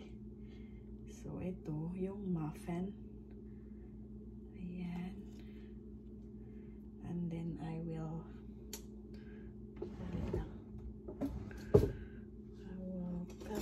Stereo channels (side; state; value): both; identical; correlation 1.00